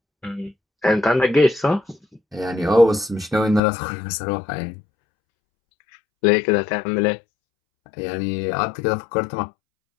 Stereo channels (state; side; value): drops out; right; at 3.6 s